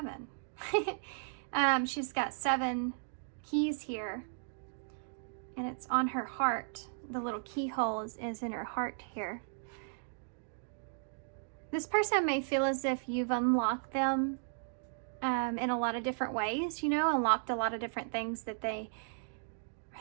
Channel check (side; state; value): left; silent; digital silence